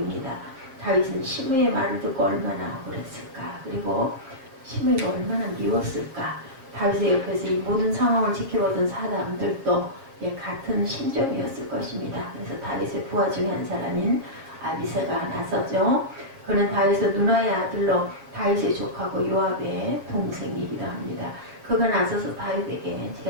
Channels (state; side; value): late; left; 7.6 ms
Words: 다윗은 시므이의 말을 듣고 얼마나 억울했을까. 그리고 시므이가 얼마나 미웠을까. 다윗의 옆에서 이 모든 상황을 지켜보던 사람들도 같은 심정이었을 것입니다. 그래서 다윗의 부하 중에 한 사람인 아비새가 나서죠. 그는 다윗의 누나의 아들로 다윗의 조카고 요압의 동생이기도 합니다. 그가 나서서 다윗에게